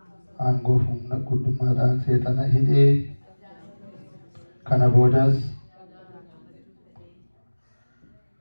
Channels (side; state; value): both; inverted; correlation -1.00